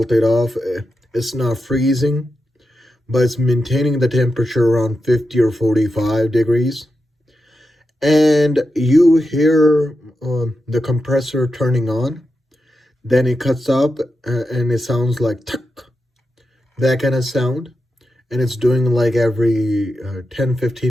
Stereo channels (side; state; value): both; normal; correlation 0.88